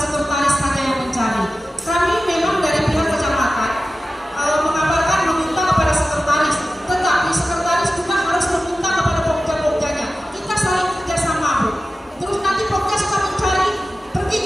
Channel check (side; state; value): both; normal; correlation 0.95